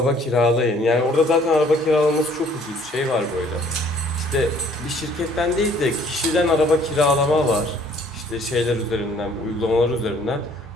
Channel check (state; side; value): normal; both; correlation 0.58